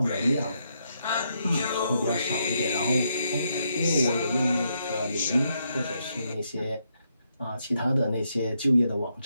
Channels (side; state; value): both; inverted; correlation -0.78